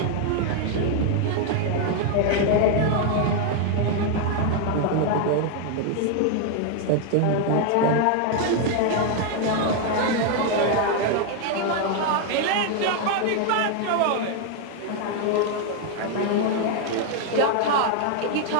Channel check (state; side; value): different; both; correlation 0.00